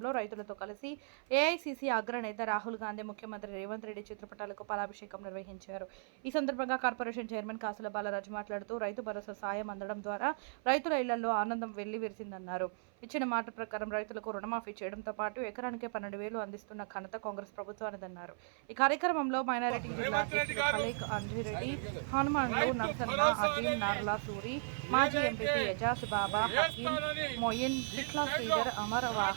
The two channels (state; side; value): silent; left; 53 dB below the other